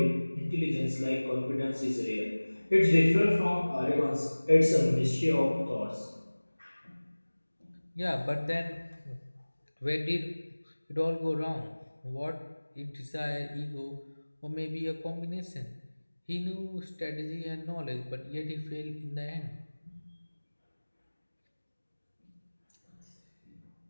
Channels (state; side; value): inverted; both; correlation -1.00